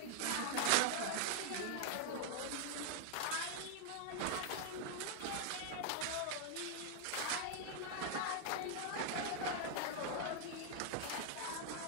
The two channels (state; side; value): different; both; correlation 0.00